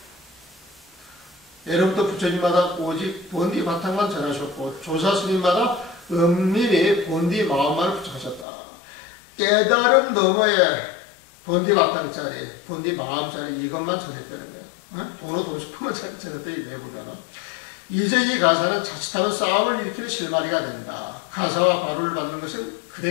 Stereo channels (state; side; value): drops out; right; at 8.5 s